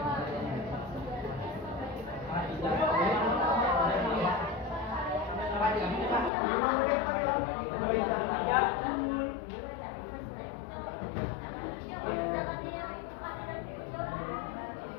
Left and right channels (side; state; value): right; drops out; at 6.3 s